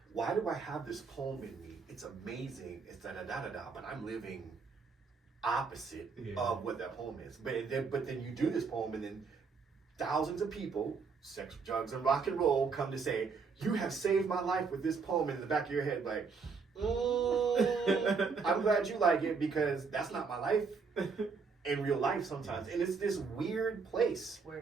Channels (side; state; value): left; quieter; 5.1 dB